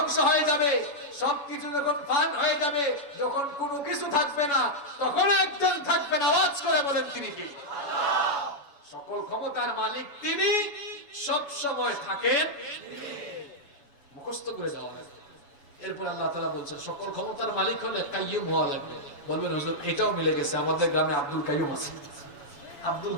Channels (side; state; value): right; late; 7.1 ms